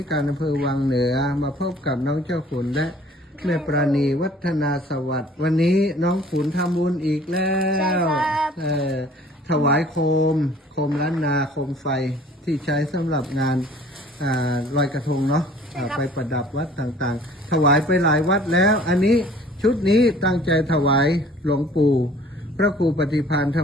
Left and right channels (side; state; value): both; normal; correlation 0.52